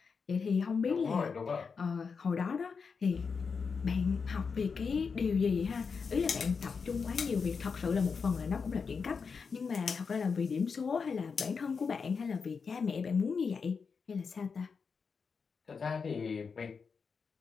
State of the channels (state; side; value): quieter; right; 5.4 dB